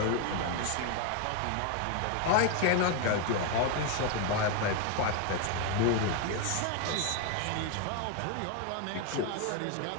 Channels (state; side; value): different; both; correlation 0.01